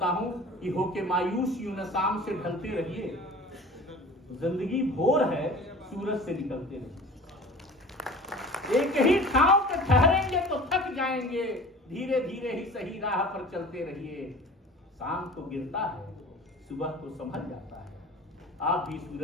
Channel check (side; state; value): both; normal; correlation 0.41